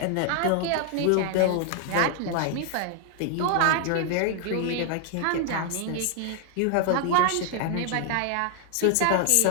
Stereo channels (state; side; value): different; both; correlation 0.00